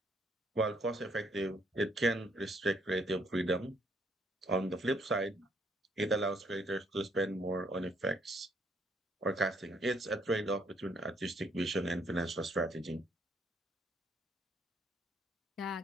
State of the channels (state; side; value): normal; both; correlation 0.68